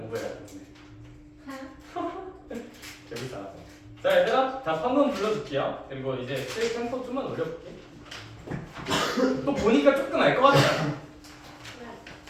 되는데. 재밌다. 자, 얘들아, 답 한 번 불러줄게요. 그리고 이제 셀 템포 좀만 올려볼게. 또 보니까 조금 알 것 같지 않아?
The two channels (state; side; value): identical; both; correlation 1.00